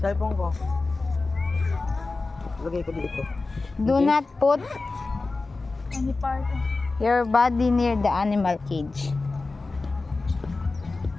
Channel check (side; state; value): right; quieter; 3.6 dB